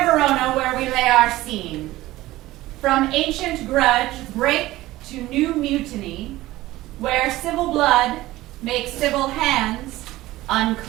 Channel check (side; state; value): left; quieter; 17.1 dB